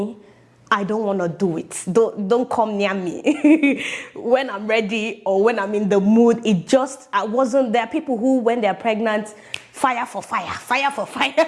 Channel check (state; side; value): identical; both; correlation 1.00